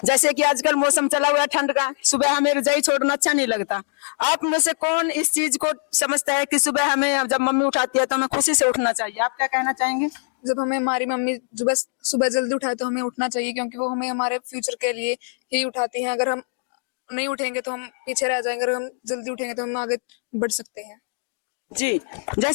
जैसे कि आजकल मौसम चला हुआ है ठंड का, सुबह हमें रजाई छोड़ना अच्छा नहीं लगता। आप में से कौन इस चीज को समझता है कि सुबह हमें जब मम्मी उठाती है तो हमें खुशी से उठना चाहिए? आप क्या कहना चाहेंगे? जब हमें हमारी मम्मी सुबह जल्दी उठाए तो हमें उठना चाहिए, क्योंकि वो हमें हमारे फ्यूचर के लिए ही उठाती हैं। अगर हम नहीं उठेंगे तो हम पीछे रह जाएंगे, अगर हम जल्दी उठेंगे तो हम आगे बढ़ सकते हैं। जी,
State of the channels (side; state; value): right; silent; digital silence